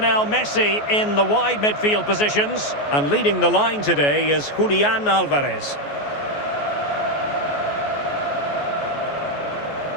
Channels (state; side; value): late; right; 14 ms